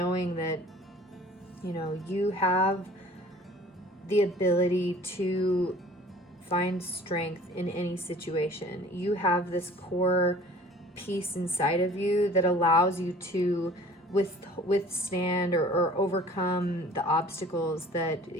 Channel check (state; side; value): normal; both; correlation 0.48